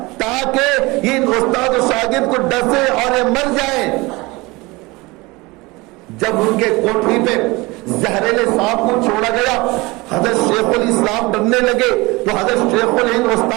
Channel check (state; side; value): quieter; left; 23.1 dB